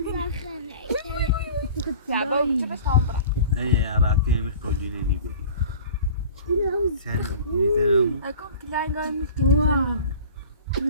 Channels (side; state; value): both; inverted; correlation -0.42